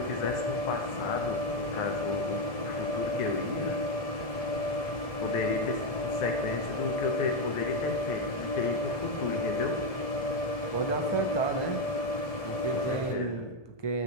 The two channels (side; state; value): right; late; 1.7 ms